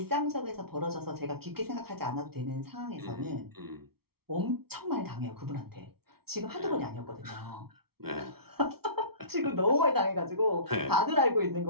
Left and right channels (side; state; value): left; late; 0.95 ms